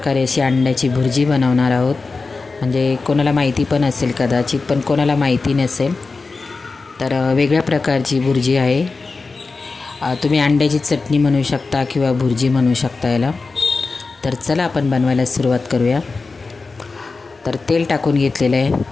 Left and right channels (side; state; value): right; quieter; 4.0 dB